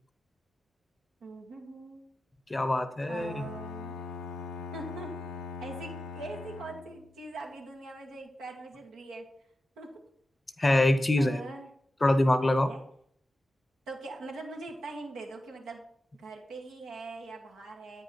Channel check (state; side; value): normal; both; correlation 0.92